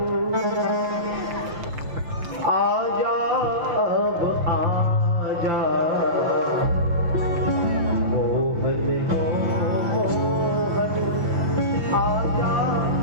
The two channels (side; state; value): left; late; 5.9 ms